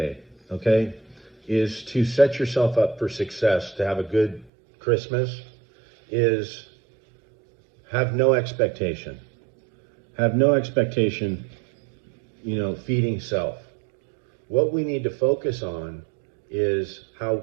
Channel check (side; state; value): left; drops out; at 4.5 s